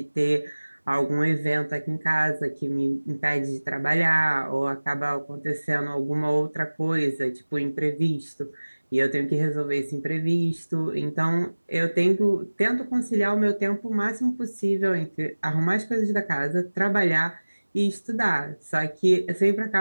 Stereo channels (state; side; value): inverted; both; correlation -1.00